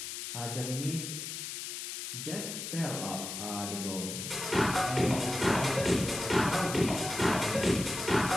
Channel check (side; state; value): left; noise; hiss, 6 dB below the sound